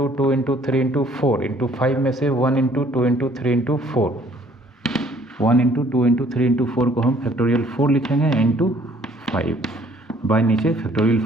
2 इंटू 3 इंटू 4 इंटू 5 में से 1 into 2 into 3 into 4, 1 into 2 into 3 into 4 को हम फैक्टोरियल 4 लिखेंगे इंटू 5, बाय नीचे फैक्टोरियल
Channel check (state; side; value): normal; both; correlation 0.60